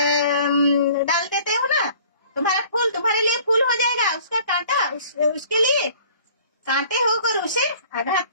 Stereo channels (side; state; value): both; inverted; correlation -0.52